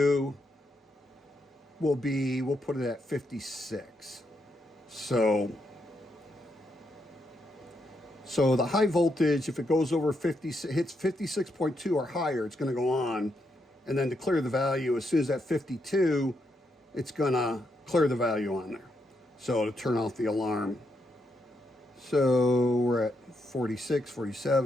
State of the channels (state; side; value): normal; both; correlation 0.80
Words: will be, we'll put it at 56. So the high voltage, if it goes over 50, hits 56.2 or higher, it's going to go on. And then to clear the value, as soon as that 52, it's going to clear the value on there. So to turn off the alarm. So we're at 46,